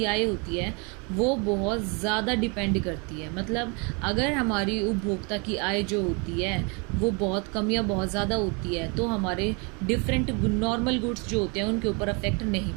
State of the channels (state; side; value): quieter; left; 32.3 dB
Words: आय होती है वो बहुत ज़्यादा डिपेंड करती है। मतलब अगर हमारी उपभोक्ता की आय जो होती है वो बहुत कम या बहुत ज़्यादा होती है तो हमारे डिफरेंट नॉर्मल गुड्स जो होते हैं उनके ऊपर अफेक्ट नहीं